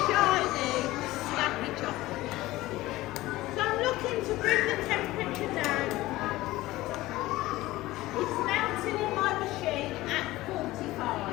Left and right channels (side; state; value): right; quieter; 17.8 dB